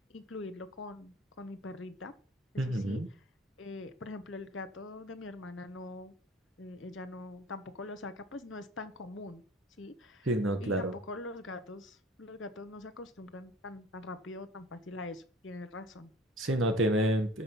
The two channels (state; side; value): normal; both; correlation 0.45